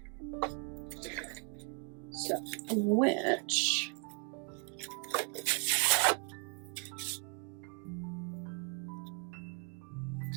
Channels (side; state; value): left; quieter; 35.6 dB